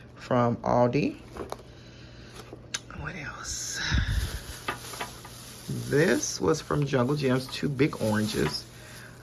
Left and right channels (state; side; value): identical; both; correlation 1.00